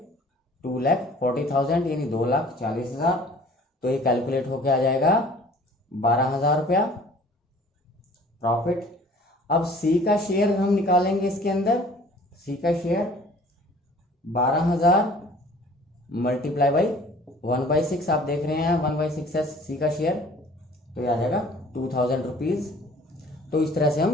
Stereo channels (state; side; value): normal; both; correlation 0.51